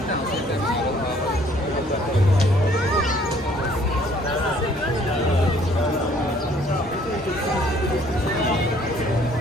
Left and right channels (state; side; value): normal; both; correlation 0.60